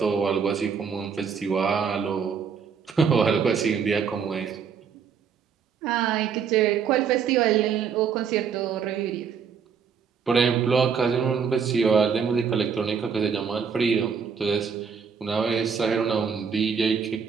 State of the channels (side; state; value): left; quieter; 6.5 dB